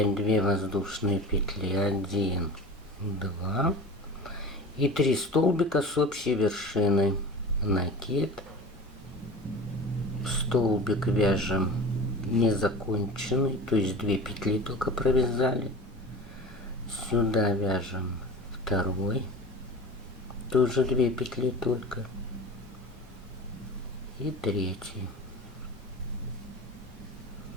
2 воздушные петли, 1, 2 и 3 столбика с общей вершиной. Накид, столбик вяжем незаконченный, то есть 2 петли только провязали. Сюда вяжем 2, тоже 2 петли только, и 3.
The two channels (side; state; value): both; normal; correlation 0.35